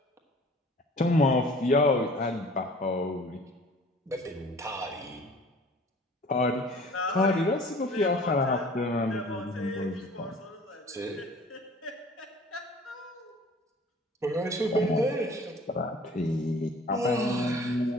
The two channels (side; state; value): both; normal; correlation 0.48